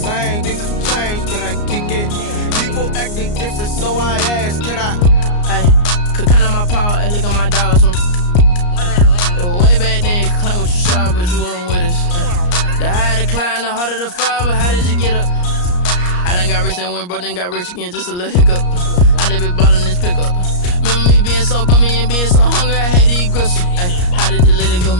Things have changed. Can I kick it? People acting different, so I ask, can I? Hey, could count on my power and look at my dogs from. It was way back then, could claim what you saw, but you weren't with us. The higher the climb, the harder the fall, but how did you get up? I done got rich and went broke, then got rich again, just a little hiccup. I done been ballin' this pickup. Remember me being so bummy and being so hungry, I had to eat gristle. Ay, how did the lady go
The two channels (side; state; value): right; late; 34 ms